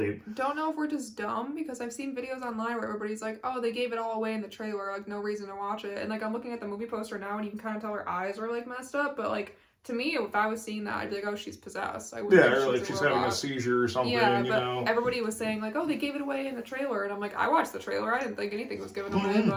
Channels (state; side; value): identical; both; correlation 1.00